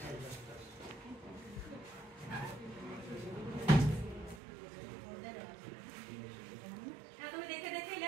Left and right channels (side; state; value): left; drops out; at 4.4 s